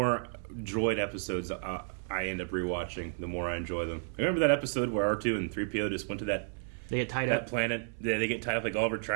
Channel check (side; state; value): left; silent; 56 dB below the other